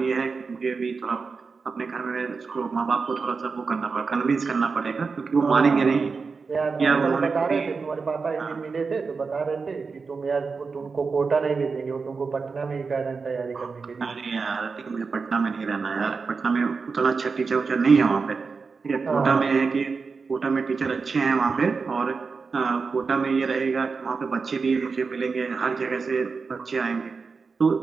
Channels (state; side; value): quieter; left; 4.8 dB